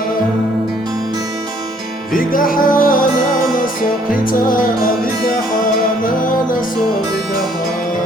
Vigahana naso kita Vigahana naso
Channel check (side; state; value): both; normal; correlation 0.63